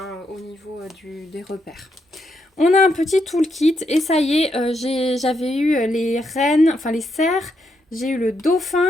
au niveau des repères. On a un petit toolkit et ça y est, j'avais eu les reines, enfin les cerfs, j'ai eu le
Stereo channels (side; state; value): both; normal; correlation 0.79